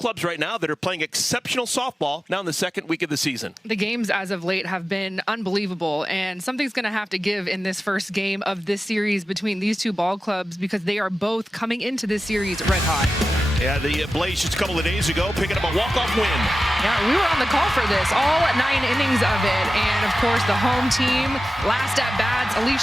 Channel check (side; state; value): both; normal; correlation 0.94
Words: right now that are playing exceptional softball now in the second week of the season. The games as of late have been unbelievable, and something's going to have to give in this first game of this series between these two ball clubs because they are both coming into this series red hot. Yeah, the Blaze just a couple of days ago picking up a walk-off win. Yeah, we were on the call for this, all 9 innings of it, and of course the home team, last at bats,